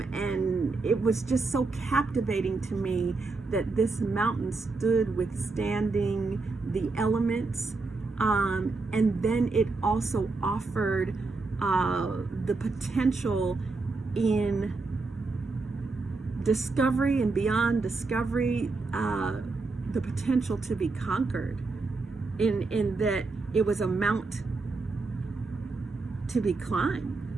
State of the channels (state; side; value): quieter; left; 3.8 dB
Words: it was just so captivating to me that this mountain stood withstanding the elements. And then it also offered the potential in discovery and beyond discovery, the potential to be conquered, in that it was a mount to be climbed,